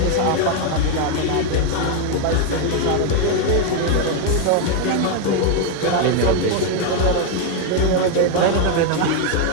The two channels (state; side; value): different; both; correlation 0.01